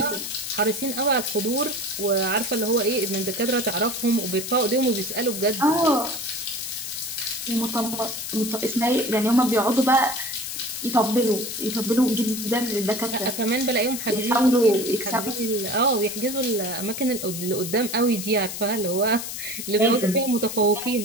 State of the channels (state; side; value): noise; left; hiss, 7 dB below the sound